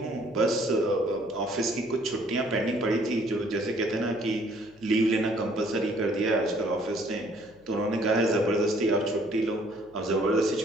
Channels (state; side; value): noise; left; hum, 27 dB below the sound